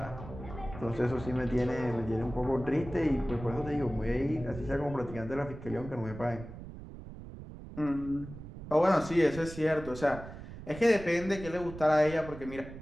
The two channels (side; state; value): right; noise; rumble, 13 dB below the sound